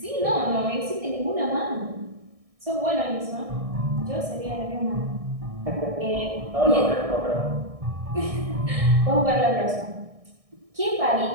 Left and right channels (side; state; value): left; late; 1.6 ms